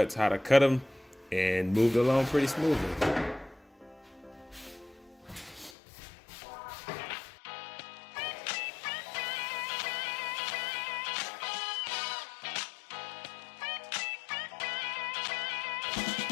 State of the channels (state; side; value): drops out; right; at 5.8 s